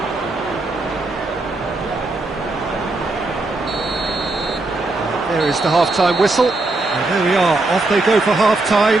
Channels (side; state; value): left; quieter; 3.1 dB